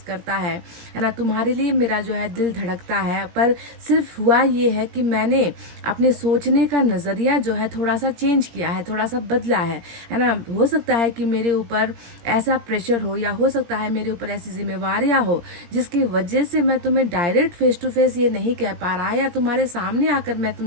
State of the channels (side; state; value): left; late; 17 ms